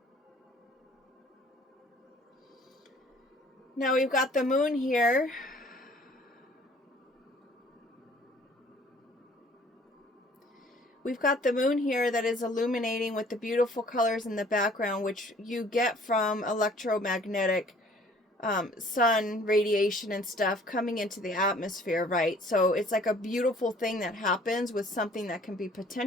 Now we've got the moon here. We've got the moon here that is illuminating with the beautiful colors in the background, which you get from electromagnetic sun radiation and stuff coming into the atmosphere, right? So it's like a beautiful thing that happens with something that can be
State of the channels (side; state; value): both; normal; correlation 0.55